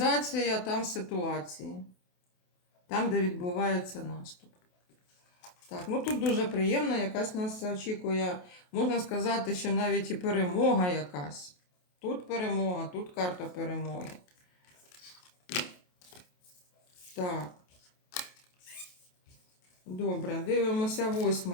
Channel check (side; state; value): right; late; 28 ms